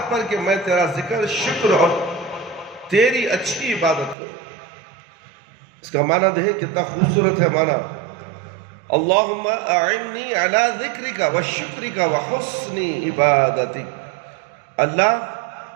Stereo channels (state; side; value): drops out; left; at 4.2 s